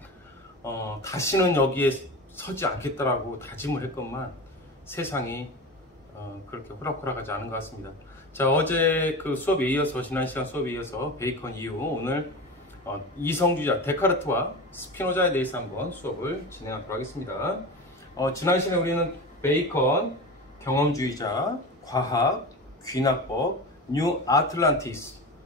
다시는 여기에 서지 않겠다라고 다짐을 했건만 세상이 그렇게 호락호락하지 않은 것 같습니다. 자, 어제 그 수업에 이어서 지난 시간 수업에 이어서 베이컨 이후 오늘 이성주의자 데카르트와 스피노자에 대해서 한번 수업을 진행하도록 하겠습니다. 지난 시간에 우리는 베이컨, 경험주의자, 과학, 귀납법, 뉴 아틀란티스,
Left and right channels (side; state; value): both; normal; correlation 0.28